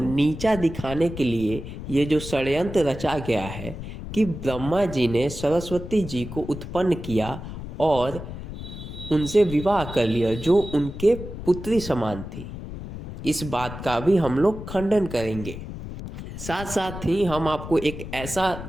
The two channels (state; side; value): noise; left; rumble, 10 dB below the sound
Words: दिखाने के लिए ये जो षड्यंत्र रचा गया है कि ब्रह्मा जी ने सरस्वती जी को उत्पन्न किया और उनसे विवाह कर लिया जो उनके पुत्री समान थी, इस बात का भी हम लोग खंडन करेंगे। साथ साथ ही हम आपको एक ऐसा